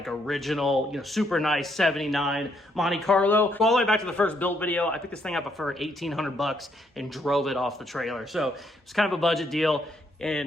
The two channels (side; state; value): both; normal; correlation 0.73